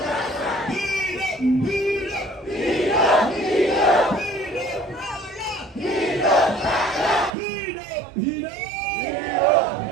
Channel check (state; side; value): drops out; left; at 7.3 s